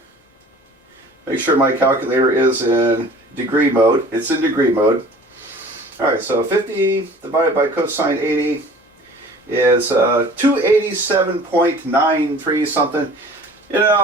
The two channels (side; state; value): both; normal; correlation 0.47